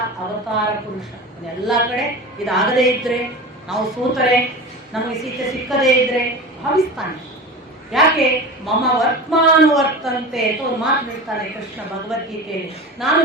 ಅವತಾರ ಪುರುಷ. ಎಲ್ಲ ಕಡೆ ಇದಾಗದೇ ಇದ್ರೆ, ನಾವು ಸೋತರೆ, ನಮಗೆ ಸೀತೆ ಸಿಕ್ಕದೇ ಇದ್ರೆ ಭಾವಿಸ್ತಾನೆ. ಯಾಕೆ? ಮಮ ವರ್ತ್ಮಾನುವರ್ತಂತೆ ಅಂತ ಒಂದು ಮಾತು ಹೇಳ್ತಾನೆ ಕೃಷ್ಣ ಭಗವದ್ಗೀತೆಯಲ್ಲಿ. ನಾನು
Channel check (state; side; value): normal; both; correlation 0.30